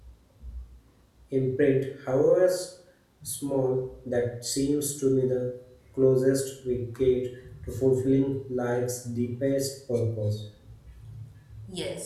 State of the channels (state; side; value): identical; both; correlation 1.00